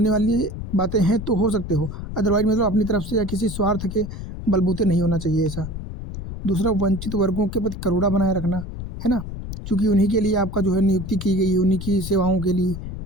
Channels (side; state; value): left; noise; rumble, 8 dB below the sound